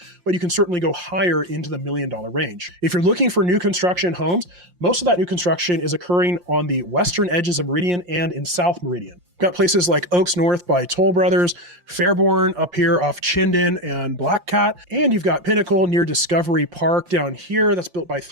but you can certainly go higher into the $1 million range. If you're looking for new construction homes, most of that new construction is occurring on the western edges of Meridian and in South Meridian. Got places like Oaks North by Toll Brothers, Fairborn up here off Chinden and Black Cat, and you've got Pinnacle near Discovery Park down here that's built by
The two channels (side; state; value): left; late; 5.7 ms